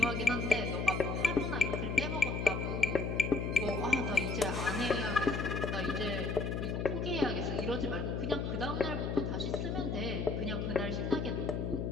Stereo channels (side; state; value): left; noise; hum, 2 dB below the sound